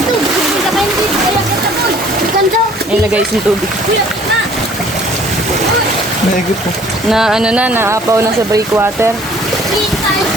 Hindi ka kayo dito. Kaya kita ko. Ganda! Ayan na guys, yung tubig. Na! Na ano na, naapaw na sa breakwater. Kita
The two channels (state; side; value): normal; both; correlation 0.55